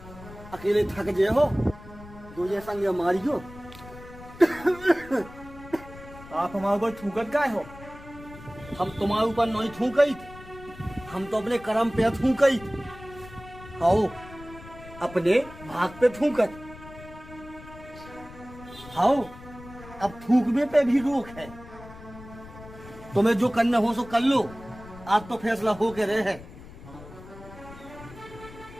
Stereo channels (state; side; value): noise; left; rumble, 17 dB below the sound